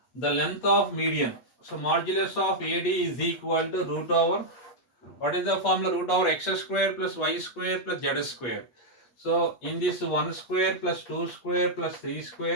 the length of median. So modulus of AD is equal to root over, what is the formula? Root over x square plus y square plus z square. So in this 1 square plus 2 square plus 3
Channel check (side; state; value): right; late; 8.3 ms